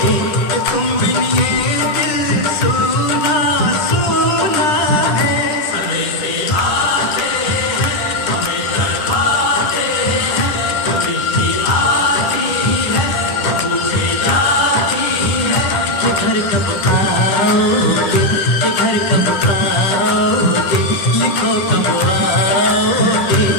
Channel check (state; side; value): late; right; 10 ms